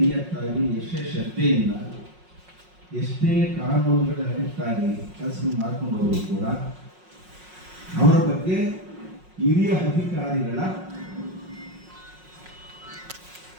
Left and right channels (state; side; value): late; left; 5.5 ms